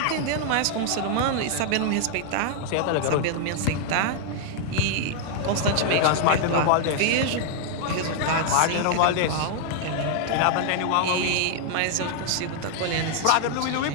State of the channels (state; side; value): different; both; correlation 0.00